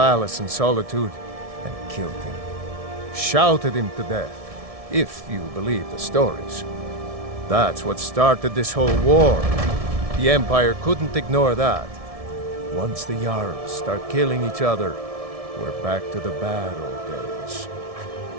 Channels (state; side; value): late; left; 1.7 ms